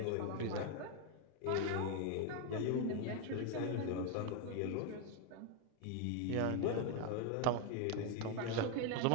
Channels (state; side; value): different; both; correlation 0.01